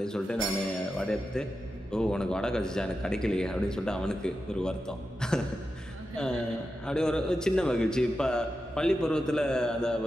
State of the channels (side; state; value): both; normal; correlation 0.90